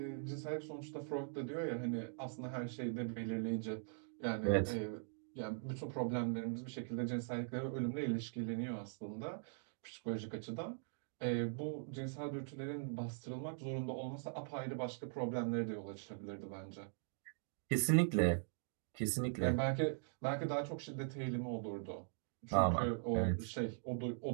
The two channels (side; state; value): left; silent; digital silence